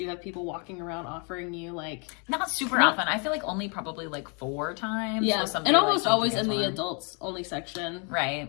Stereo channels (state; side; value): quieter; right; 36.1 dB